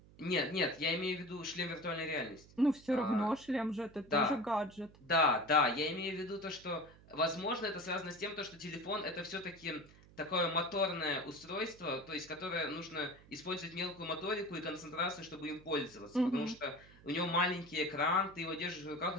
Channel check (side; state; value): right; noise; hum, 23 dB below the sound